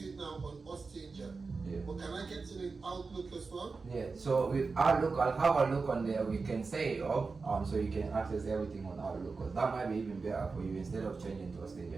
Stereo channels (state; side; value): quieter; left; 4.3 dB